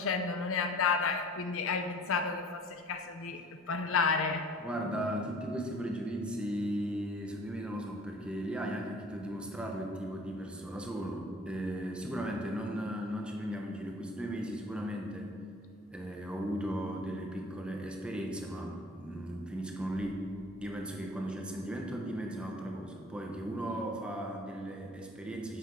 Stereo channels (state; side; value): normal; both; correlation 0.47